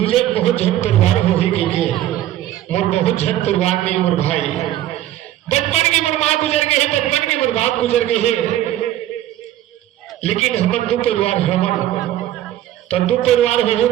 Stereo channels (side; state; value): left; quieter; 13.2 dB